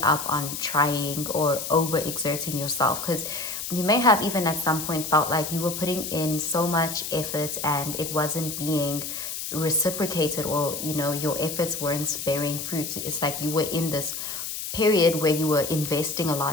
up on trying or overexerting yourself, because you may have even at some point felt like you were putting in so much effort and it wasn't being reciprocated, or your efforts weren't bearing fruit. It's like you were in this period where you were investing a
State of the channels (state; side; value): noise; left; hiss, 6 dB below the sound